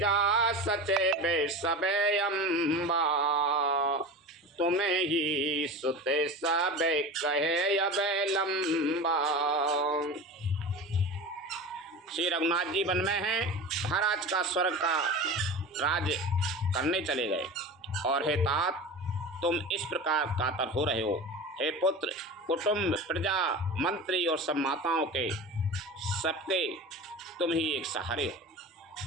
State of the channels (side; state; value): both; normal; correlation 0.31